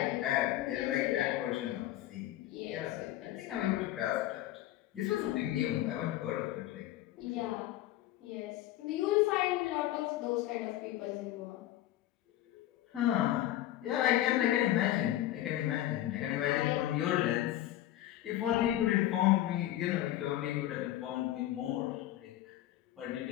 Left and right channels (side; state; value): right; quieter; 14.2 dB